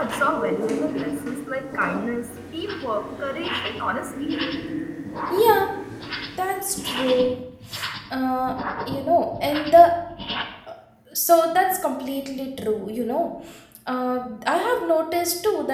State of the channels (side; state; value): both; identical; correlation 1.00